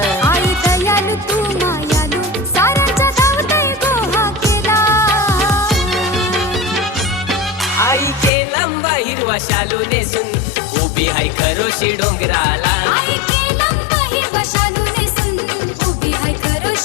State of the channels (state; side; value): drops out; right; at 8.3 s